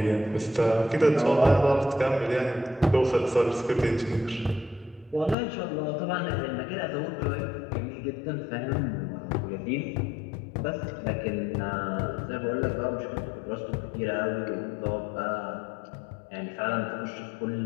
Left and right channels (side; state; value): right; drops out; at 5.4 s